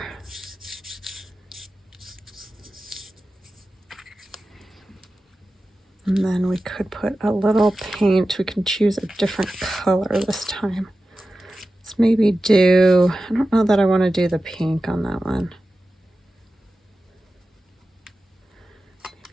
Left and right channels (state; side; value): normal; both; correlation 0.94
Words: And then we could put a little paint. We can choose a different color this time. Let's maybe do, I don't know that I want to do the pink on that one.